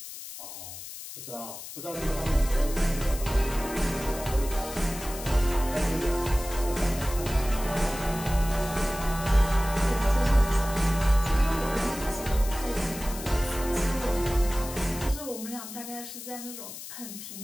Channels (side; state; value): left; noise; hiss, 11 dB below the sound